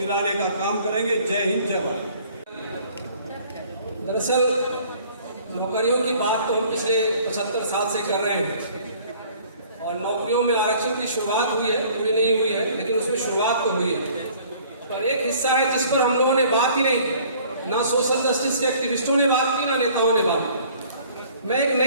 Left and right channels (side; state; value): both; inverted; correlation -0.54